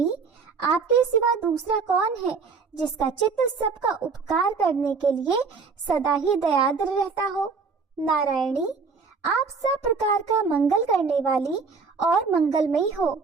आपके सिवा दूसरा कौन है जिसका चित्त सबका उपकार करने के लिए सदा ही दयाद्र रहता हो। नारायणी, आप सब प्रकार का मंगल करने वाली और मंगलमयी हो।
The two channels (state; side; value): quieter; left; 5.0 dB